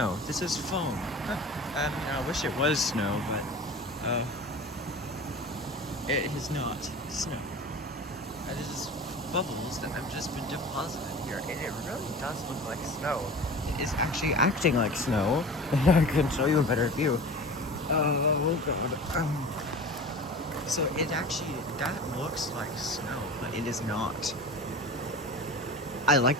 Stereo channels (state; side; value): normal; both; correlation 0.36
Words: This is foam. I wish it was snow, but it is not snow. This is bubbles that have just been deposited here, and it really does look like snow. It is actually acting like snow. I can show you a better view. Oh god. So that looks like snow, but it is not. I like